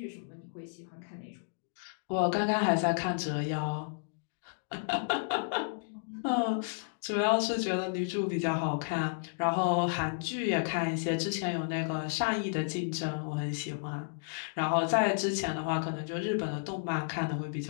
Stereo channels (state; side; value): silent; right; digital silence